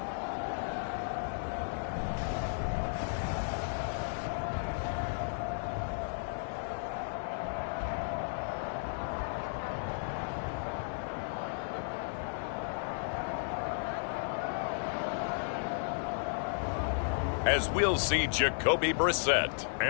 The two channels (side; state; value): right; silent; digital silence